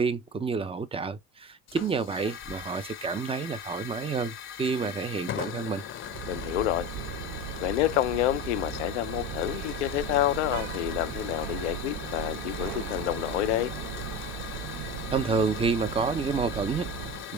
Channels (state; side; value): normal; both; correlation 0.26